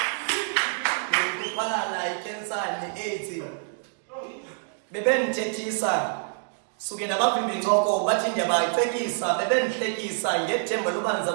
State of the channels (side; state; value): left; silent; digital silence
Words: ndikuphala ayikensa ne-AIDS bebengithethisa suke nabavimbi incoko bathi ndiyabayicekisa bebendihlekisa ngethemba loba